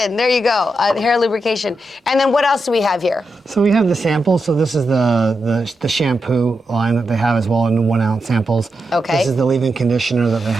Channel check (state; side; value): normal; both; correlation 0.87